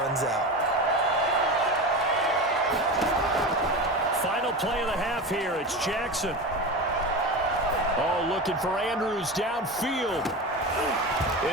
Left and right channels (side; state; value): both; normal; correlation 0.26